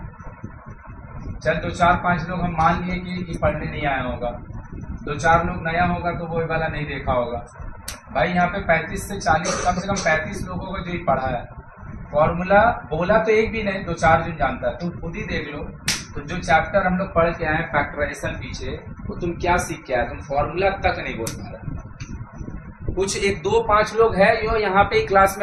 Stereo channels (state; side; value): identical; both; correlation 1.00